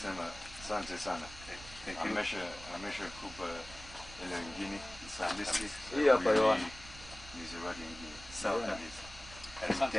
asante sana. Amesha kupa ile ingine sandisi. Hii hapa Yohana. Ni zawadi ingine. Sawa kabisa.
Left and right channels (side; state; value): right; noise; rumble, 16 dB below the sound